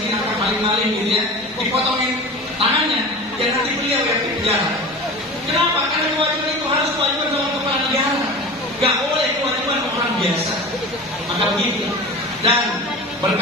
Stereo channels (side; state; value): both; normal; correlation 0.34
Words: akan maling-maling gitu ya, dipotongin tangannya, dan nanti beliau yang di penjara. Kenapa? Karena kewajiban itu harus kewajiban dalam kepala negara, gak boleh kewajiban orang biasa. Maka begitu. Dan